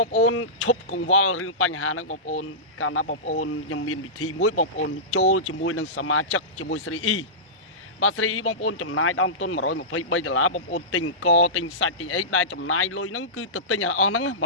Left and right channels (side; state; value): both; normal; correlation -0.18